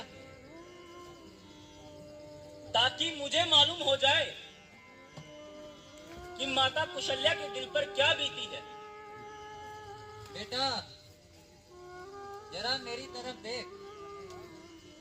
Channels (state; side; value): identical; both; correlation 1.00